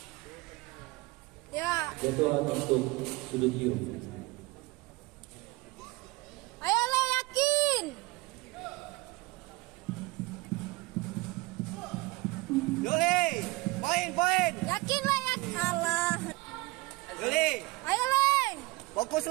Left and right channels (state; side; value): quieter; left; 22.8 dB